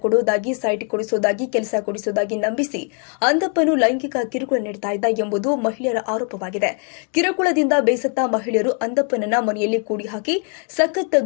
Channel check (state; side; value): quieter; right; 38.8 dB